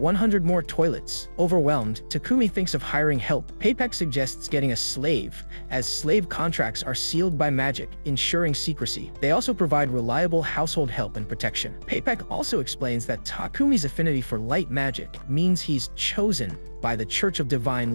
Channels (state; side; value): inverted; both; correlation -1.00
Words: more toilets. Overwhelmed, Takumi thinks of hiring help. Papek suggests getting a slave, as slave contracts are sealed by magic, ensuring secrecy. They also provide reliable household help and protection. Papek also explains that Takumi's affinity for light magic means he's chosen by the Church of